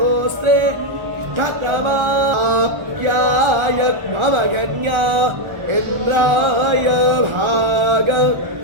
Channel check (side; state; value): left; late; 1.4 ms